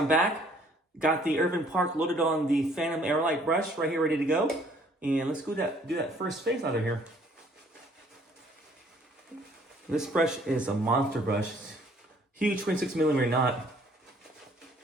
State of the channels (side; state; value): both; normal; correlation 0.60